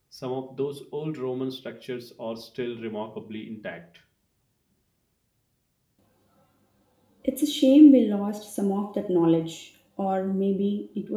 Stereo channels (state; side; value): identical; both; correlation 1.00